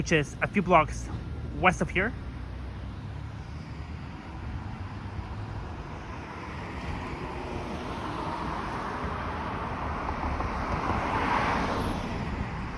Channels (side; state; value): both; identical; correlation 1.00